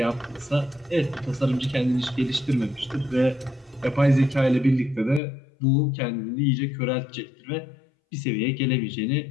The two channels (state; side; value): drops out; right; at 5.2 s